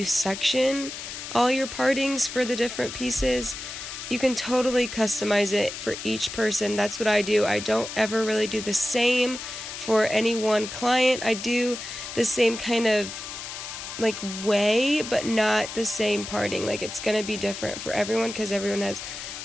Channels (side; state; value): left; noise; hiss, 9 dB below the sound